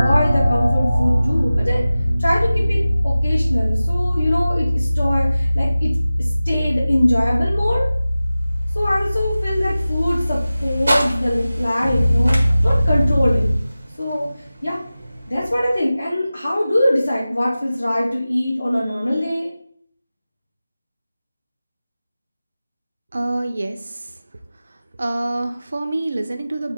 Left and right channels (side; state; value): both; inverted; correlation -0.96